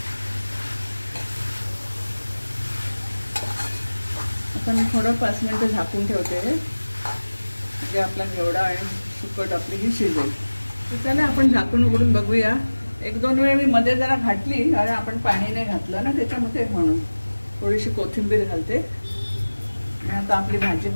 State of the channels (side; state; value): both; inverted; correlation -1.00